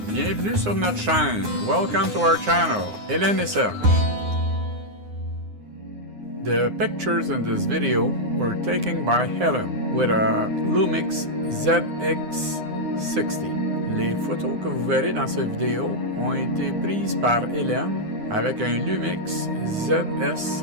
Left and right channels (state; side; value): late; left; 9.7 ms